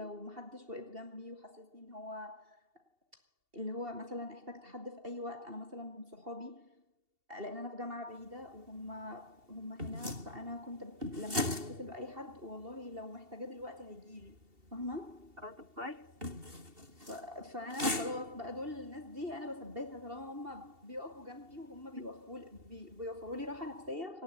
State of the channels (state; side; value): late; left; 2.7 ms